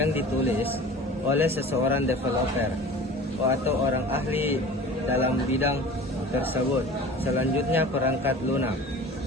ditulis oleh seseorang developer atau orang ahli dalam bidang tersebut. Selanjutnya, perangkat lunak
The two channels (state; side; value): normal; both; correlation 0.40